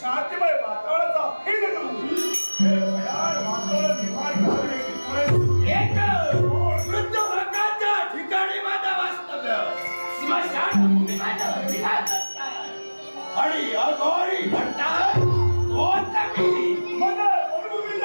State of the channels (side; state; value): both; inverted; correlation -1.00